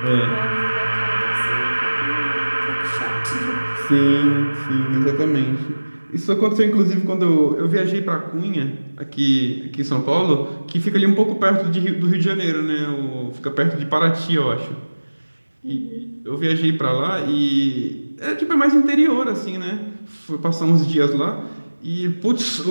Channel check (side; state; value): both; inverted; correlation -1.00